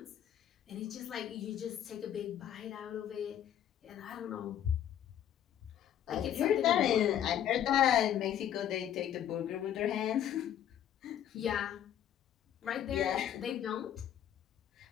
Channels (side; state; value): right; quieter; 10.4 dB